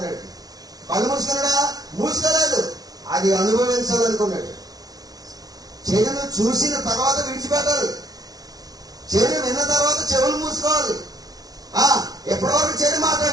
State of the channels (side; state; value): left; late; 0.18 ms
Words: కళ్ళు మూసుకున్నాడా? మూసుకోలేదు. అది అనుభవించాలనుకున్నాడు. చెడును చూసిన తర్వాత విడిచిపెట్టాలి. చెడు విన్న తర్వాత చెవులు మూసుకోవాలి. ఎప్పటివరకు చెడు